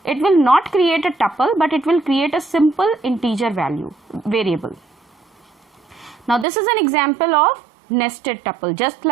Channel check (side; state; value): left; drops out; at 6.5 s